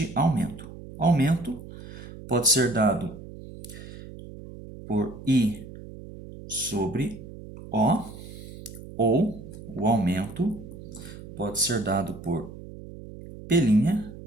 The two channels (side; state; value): right; noise; hum, 14 dB below the sound